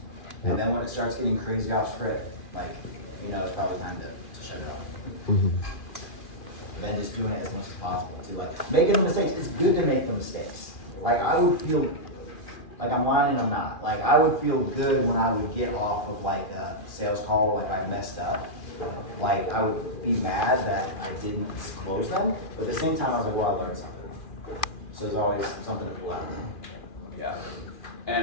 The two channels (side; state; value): right; late; 2.4 ms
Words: And then when it starts getting crazy off script, like it's probably time to shut it off. Mm-hmm. Then just doing it as much as possible too. Like making the mistakes, it's good to make the mistakes. Like I would feel like I'm lying and I'm not. Like I would feel good when I would get off of like a sales call, like I messed up. Like I would be mad that I didn't close them, but at the same time I was like, well, I learned something. So there's always something to pull out of them. Yeah.